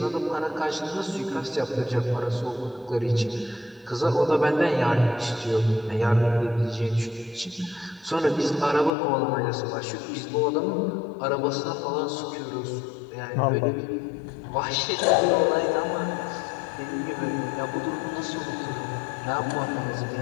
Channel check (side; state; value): right; drops out; at 8.9 s